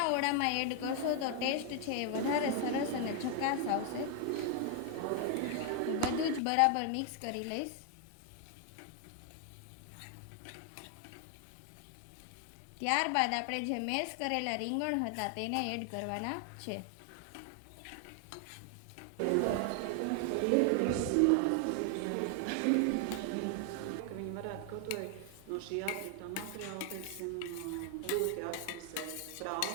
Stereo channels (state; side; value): different; both; correlation 0.00